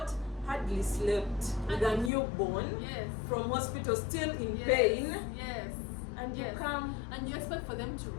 Hardly slept with a newborn from hospital, still in pain. Yes. And you come and you expect for them to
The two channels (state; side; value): drops out; right; at 2.1 s